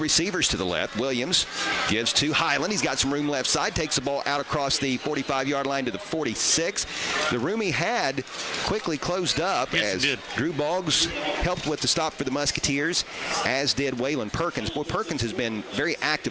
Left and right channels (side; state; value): both; identical; correlation 1.00